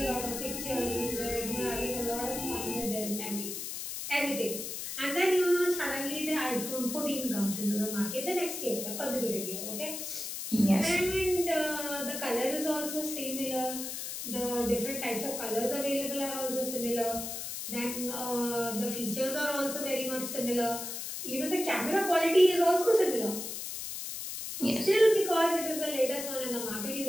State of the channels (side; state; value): left; noise; hiss, 6 dB below the sound